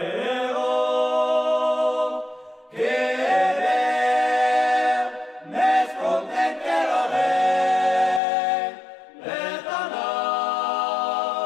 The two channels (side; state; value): right; drops out; at 8.2 s